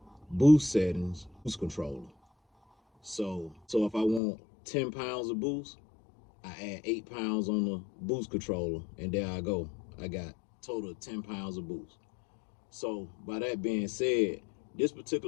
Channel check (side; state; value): right; drops out; at 4.2 s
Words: boost settings, boost controller. So if I want 10 pounds of boost, I add 8 pounds on the boost controller, and there I go. I got total of 10 pounds of boost. So by that being said, this